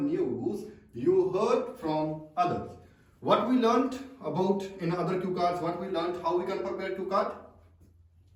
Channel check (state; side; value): identical; both; correlation 1.00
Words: you heard from others. What we learned about in other cue cards, what we learned, how we can prepare cue card?